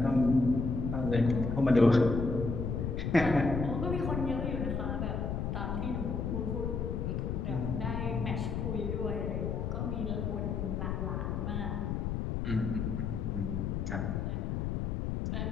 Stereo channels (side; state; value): left; noise; rumble, 1 dB below the sound